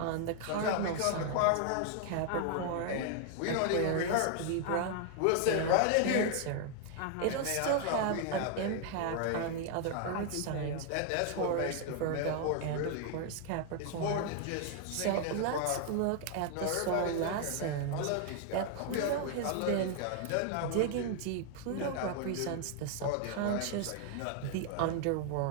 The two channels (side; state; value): both; different; correlation 0.00